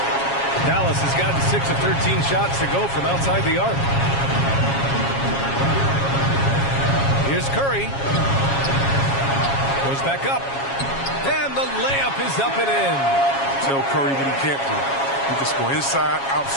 Dallas has gotten 6 of 13 shots to go from outside the arc. Here's Curry. Goes back up. And the layup is up and in. Tell Curry what he can't do. He can score inside,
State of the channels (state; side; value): late; right; 7.3 ms